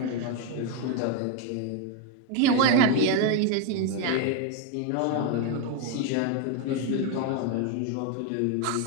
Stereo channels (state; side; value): different; both; correlation 0.01